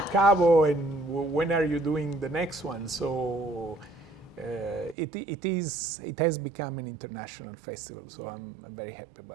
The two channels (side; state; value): left; drops out; at 5.0 s